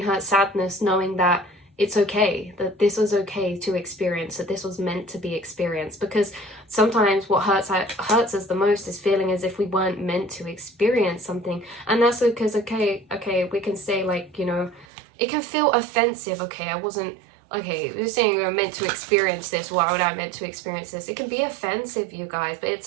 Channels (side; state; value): left; drops out; at 14.9 s